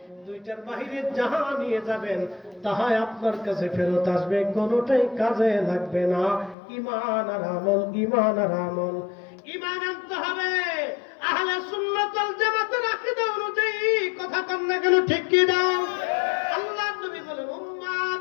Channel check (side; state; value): right; drops out; at 6.6 s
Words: দুইটার বাহিরে যাহা নিয়ে যাবেন তাহাই আপনার কাছে ফেরত আসবে, কোনোটাই কাজে লাগবে না। ঈমান আর আমল, ঈমান আর আমল। ঈমান আনতে হবে আহলে সুন্নাত ওয়াল জামাতের আকীদা অনুযায়ী। কথা কন না কেন, ঠিক কি দাও? আল্লাহর নবী বলেন উম্মত,